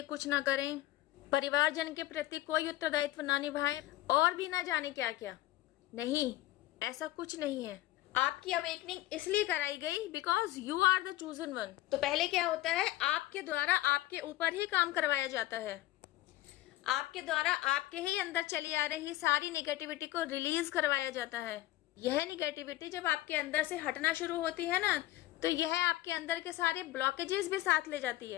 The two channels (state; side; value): quieter; right; 16.5 dB